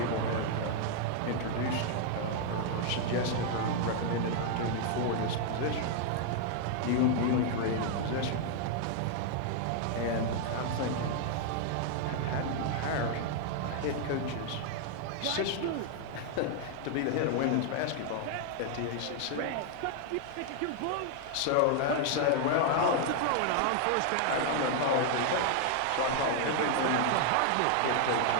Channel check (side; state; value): both; different; correlation 0.00